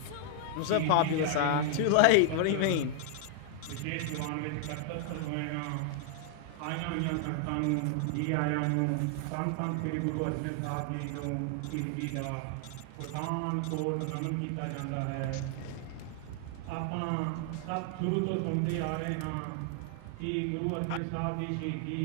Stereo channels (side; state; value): both; different; correlation 0.00